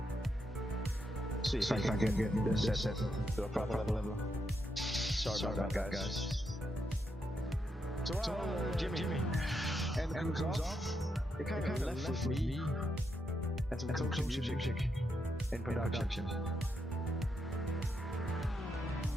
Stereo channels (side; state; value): both; normal; correlation 0.81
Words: See if I can get this set to a proper level. Sorry about that, guys. So Jimmy, and comes off. It kind of left with me and some close music in production.